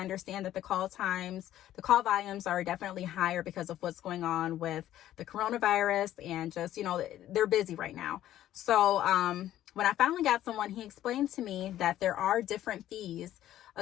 that the call volumes are definitely higher because of what's going on with the coronavirus and just, they're busy right now. So, when I finally got someone, he explained to me that there are different fees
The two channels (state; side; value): quieter; right; 12.8 dB